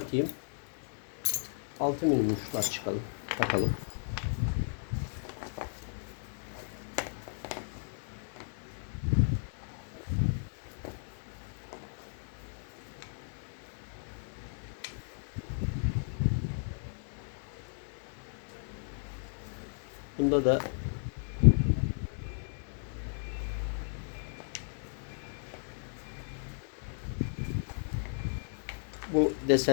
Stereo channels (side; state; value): right; silent; digital silence